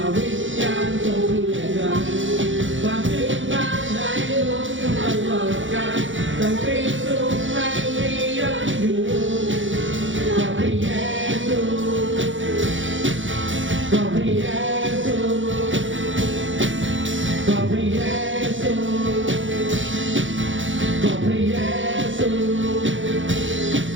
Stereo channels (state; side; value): late; left; 0.56 ms